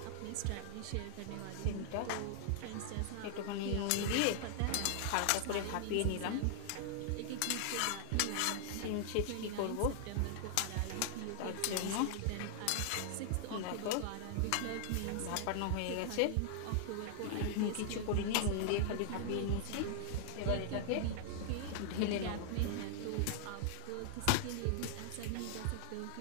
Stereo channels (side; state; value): both; different; correlation -0.01